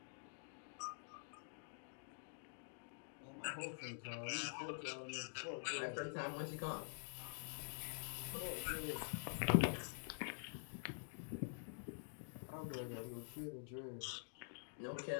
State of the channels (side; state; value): right; silent; digital silence